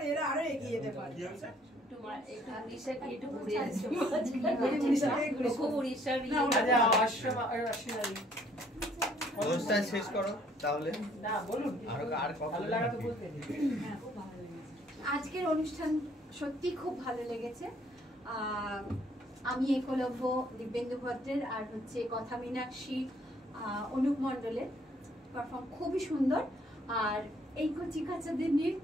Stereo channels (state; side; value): normal; both; correlation 0.63